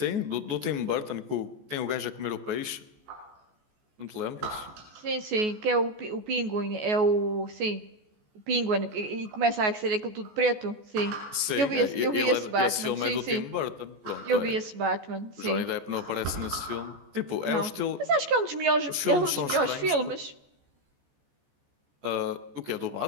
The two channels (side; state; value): left; late; 14 ms